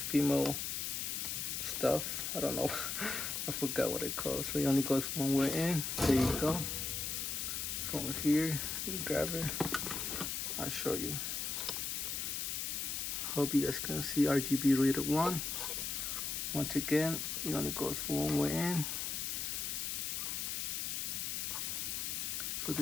stuff. I don't know. I forgot what it calls. So it only goes one way in. There you go. From here, you grab it. I'll show you. Hope you guys can see RGB reader one. Once again, it only goes one way in. So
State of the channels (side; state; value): left; noise; hiss, 2 dB below the sound